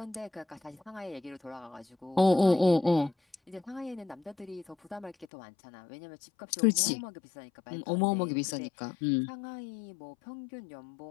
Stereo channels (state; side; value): drops out; right; at 5.2 s